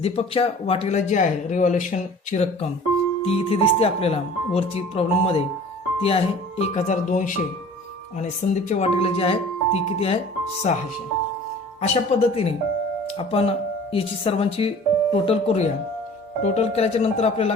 वाटेला जी आहे रिव्हॅल्युएशनची रक्कम ती इथे दिसते आपल्याला वरची प्रॉब्लेममध्ये, ती आहे 1200 आणि संदीपच्या वाटेला जी आहे ती किती आहे 600. अशा पद्धतीने आपण याची सर्वांची टोटल करूया. टोटल केल्याच्या नंतर आपल्या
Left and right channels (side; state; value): both; normal; correlation 0.46